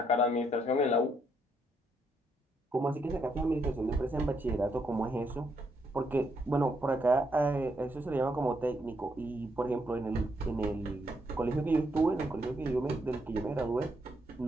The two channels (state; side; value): normal; both; correlation 0.76